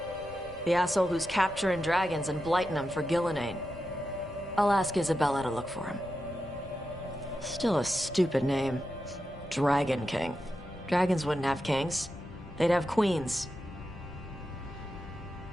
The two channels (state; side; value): noise; left; rumble, 19 dB below the sound